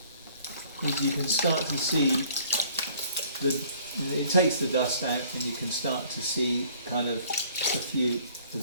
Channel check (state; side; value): inverted; both; correlation -0.56